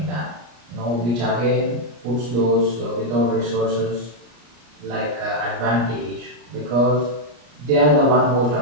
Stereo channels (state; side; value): late; left; 34 ms